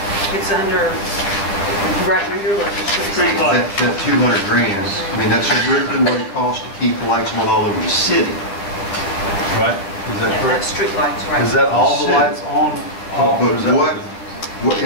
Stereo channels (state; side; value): late; right; 10 ms